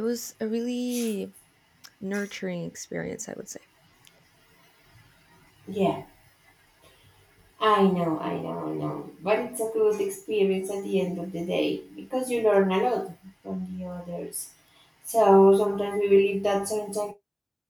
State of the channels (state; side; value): identical; both; correlation 1.00